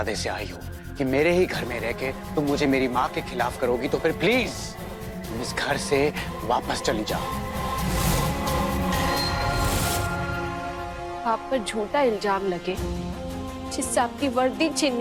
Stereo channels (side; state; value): both; identical; correlation 1.00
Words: से आई हो कि मेरे ही घर में रह के तुम मुझे मेरी माँ के खिलाफ करोगी तो फिर प्लीज तुम इस घर से वापस चली जाओ। आप पर झूठा इल्जाम लगे जिससे आपकी वर्दी